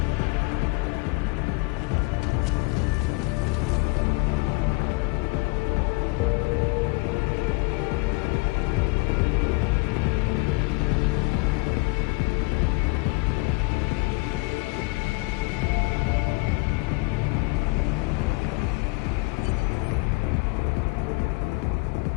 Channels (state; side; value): quieter; right; 26.0 dB